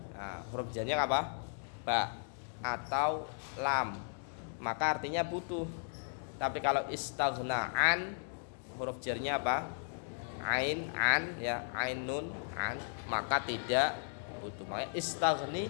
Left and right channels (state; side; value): silent; right; digital silence